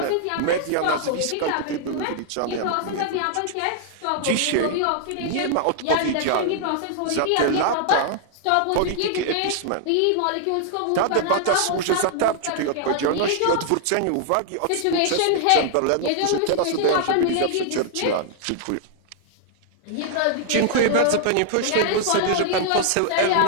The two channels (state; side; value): different; both; correlation -0.01